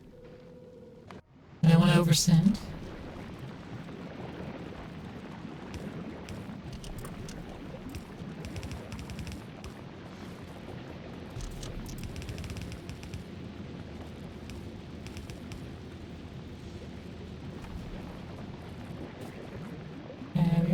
I don't want to oversend. There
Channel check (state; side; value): identical; both; correlation 1.00